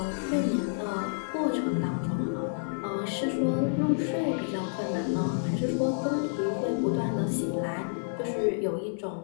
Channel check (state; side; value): silent; right; 58 dB below the other